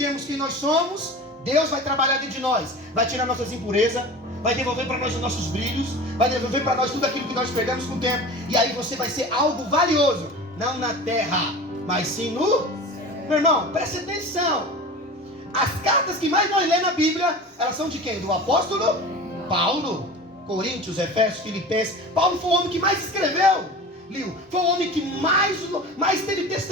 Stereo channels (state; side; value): normal; both; correlation 0.35